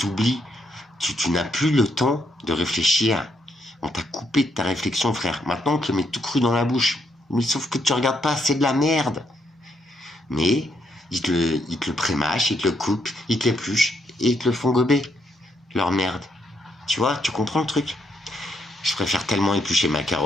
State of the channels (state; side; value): normal; both; correlation 0.76